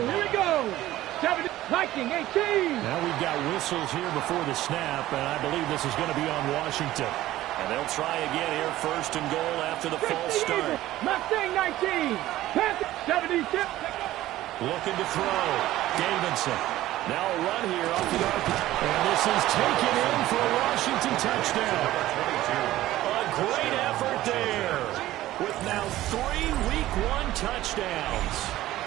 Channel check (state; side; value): quieter; left; 15.2 dB